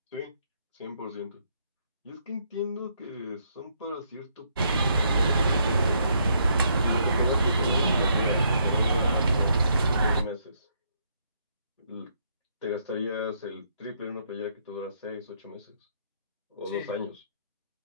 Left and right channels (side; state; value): both; inverted; correlation -0.73